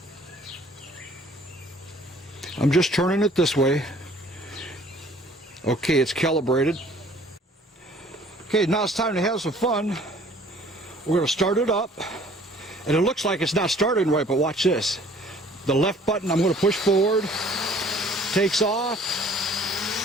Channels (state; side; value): normal; both; correlation 0.54